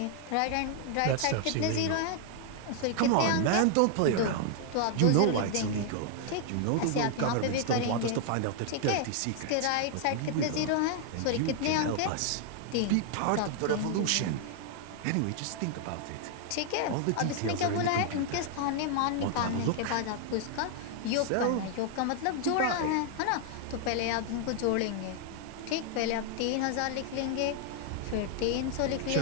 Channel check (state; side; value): different; both; correlation 0.00